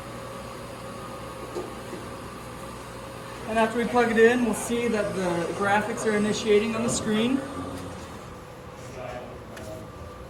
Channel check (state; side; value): identical; both; correlation 1.00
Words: And after we plug it in, we'll see that the graphics are initiating on the screen.